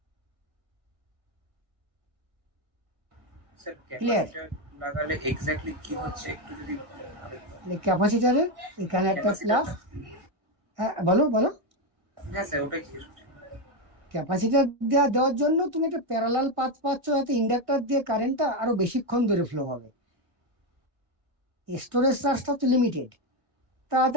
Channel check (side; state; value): left; late; 1.7 ms